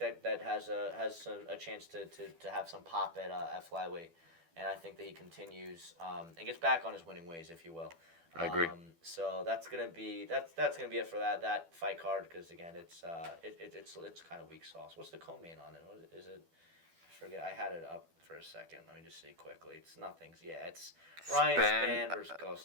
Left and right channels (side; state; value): left; late; 12 ms